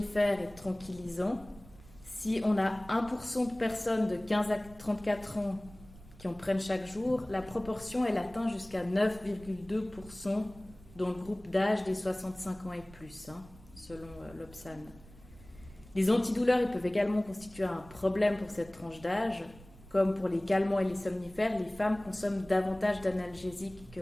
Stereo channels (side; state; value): right; noise; rumble, 21 dB below the sound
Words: et de tranquillisants. Si on a 1% de personnes de 15 à 34 ans qui en prennent chaque jour, la proportion elle atteint jusqu'à 9,2% dans le groupe d'âge des 65 ans et plus, selon l'Obsan. Les antidouleurs ils peuvent également constituer un problème pour cette tranche d'âge. Comme pour les calmants et les somnifères, les femmes consomment davantage d'analgésiques que